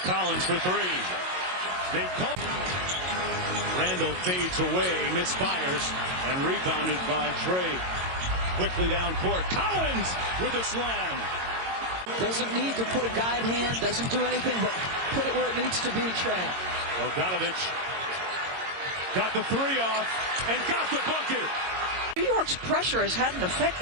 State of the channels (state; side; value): late; left; 22 ms